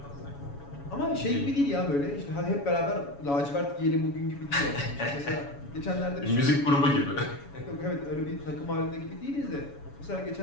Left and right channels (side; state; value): right; late; 7.1 ms